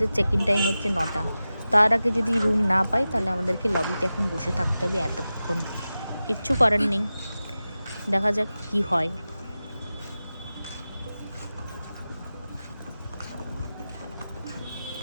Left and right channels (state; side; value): inverted; both; correlation -0.94